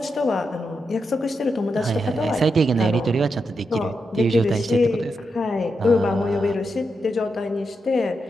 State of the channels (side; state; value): both; normal; correlation 0.85